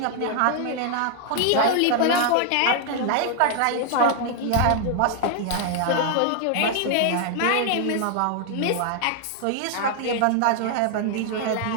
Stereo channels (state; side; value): different; both; correlation 0.00